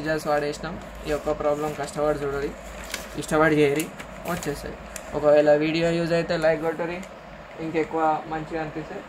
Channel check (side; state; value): both; identical; correlation 1.00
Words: వాడేసినాం. ఈ యొక్క ప్రాబ్లం కష్టపడి చూడాలి, ఇష్టపడి చేయరి, వచ్చేస్తుంది. ఒకవేళ వీడియో యూజ్ అయితే లైక్ కొట్టరి, ఇంకెక్కువ మంచిగా అనిపిస్తే